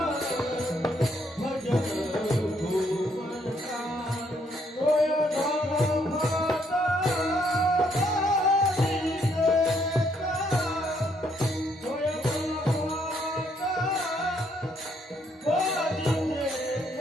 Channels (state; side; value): normal; both; correlation 0.70